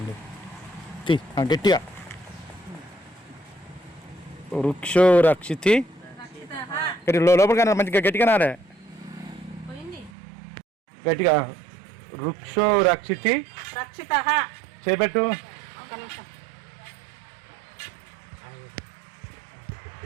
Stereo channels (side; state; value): left; drops out; at 10.1 s